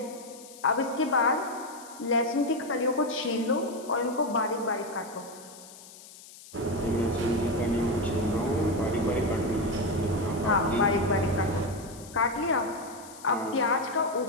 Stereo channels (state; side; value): noise; left; hiss, 19 dB below the sound